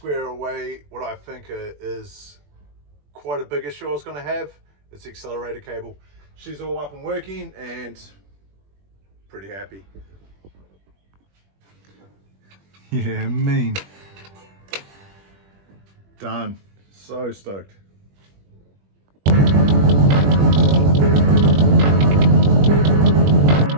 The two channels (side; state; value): left; late; 21 ms